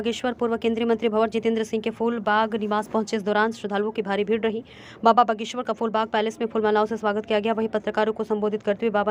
पूर्व केंद्रीय मंत्री भंवर जितेंद्र सिंह के फूल बाग निवास पहुंचे। इस दौरान श्रद्धालुओं की भारी भीड़ रही। बाबा बागेश्वर का फूल बाग पैलेस में फूलमालाओं से स्वागत किया गया। वहीं पत्रकारों को संबोधित करते हुए बाबा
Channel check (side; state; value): both; identical; correlation 1.00